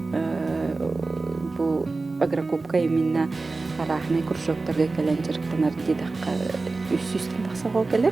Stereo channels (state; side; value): quieter; left; 3.6 dB